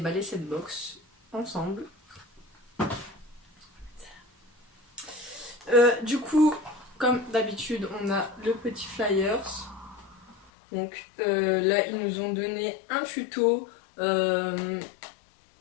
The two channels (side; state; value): right; drops out; at 10.5 s